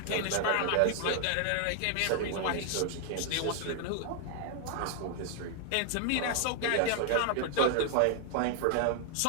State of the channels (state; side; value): different; both; correlation 0.00